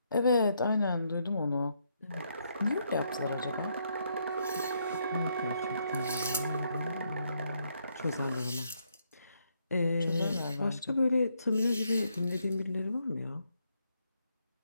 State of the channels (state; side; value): inverted; both; correlation -0.75